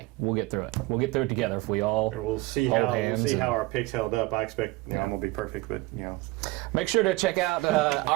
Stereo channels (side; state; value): left; quieter; 20.9 dB